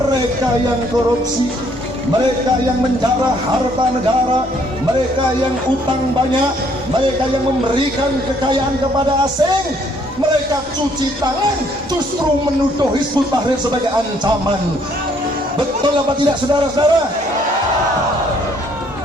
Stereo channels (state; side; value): normal; both; correlation 0.65